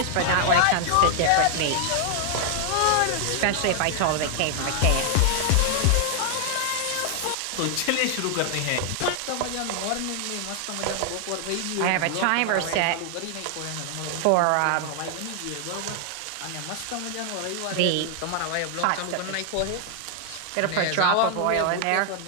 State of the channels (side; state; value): both; different; correlation 0.00